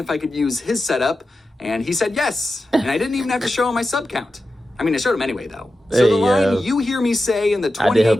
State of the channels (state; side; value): normal; both; correlation 0.92